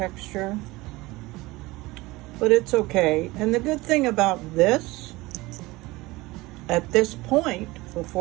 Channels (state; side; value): quieter; left; 20.8 dB